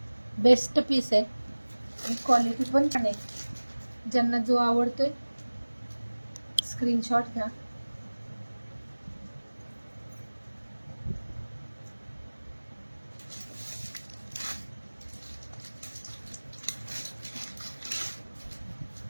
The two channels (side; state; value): both; inverted; correlation -1.00